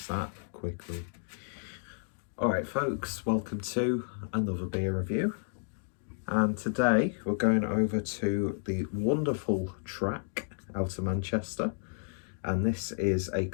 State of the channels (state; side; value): silent; right; digital silence